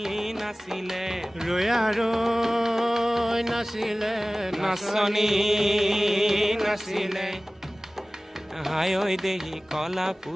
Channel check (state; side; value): normal; both; correlation 0.98